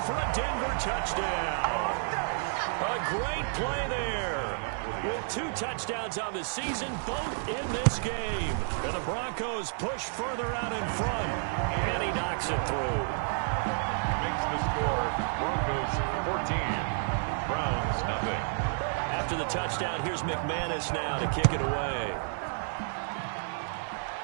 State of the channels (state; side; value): silent; left; digital silence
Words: a Denver touchdown. A great play there. With 2 touchdowns on the season, both in this game. And the Broncos push further out in front. And he knocks it through. Makes the score Broncos 14, Browns nothing. After the touchdown, here's McManus now to kick it away.